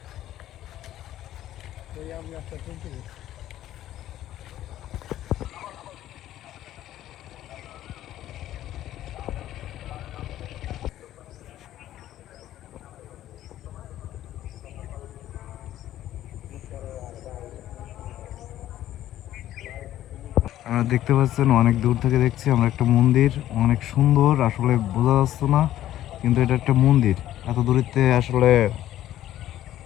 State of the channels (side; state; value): right; quieter; 13.0 dB